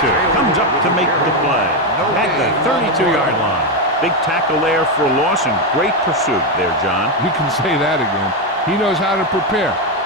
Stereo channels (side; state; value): both; normal; correlation 0.08